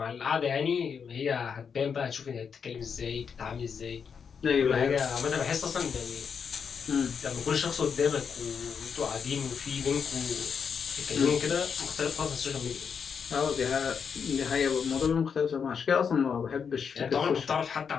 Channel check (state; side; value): quieter; right; 6.5 dB